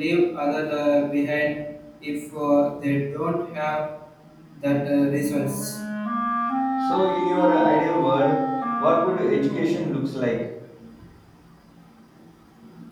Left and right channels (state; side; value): identical; both; correlation 1.00